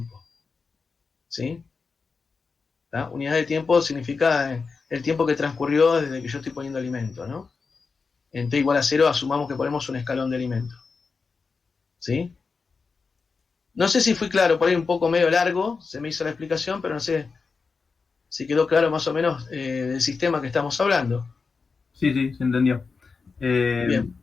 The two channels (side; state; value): right; quieter; 4.8 dB